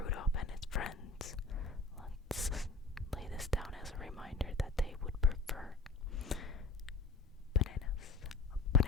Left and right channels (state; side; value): quieter; right; 3.8 dB